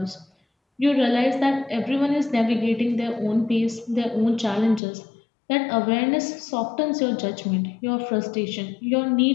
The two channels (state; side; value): drops out; right; at 4.8 s